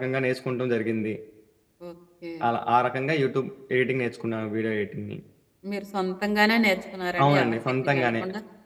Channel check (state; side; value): identical; both; correlation 1.00